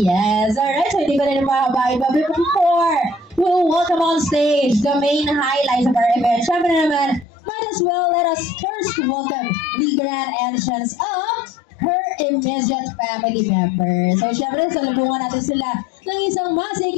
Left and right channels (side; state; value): right; drops out; at 7.2 s